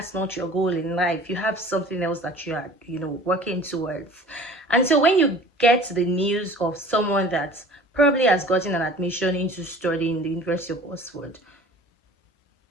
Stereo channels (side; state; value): both; normal; correlation 0.45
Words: not your goal in life. You have something else that you are working towards. And so when you get the news of someone that probably has gotten an admission into studying the University of Oxford,